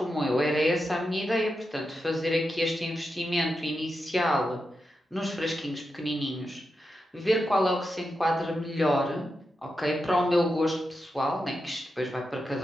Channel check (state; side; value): normal; both; correlation 0.88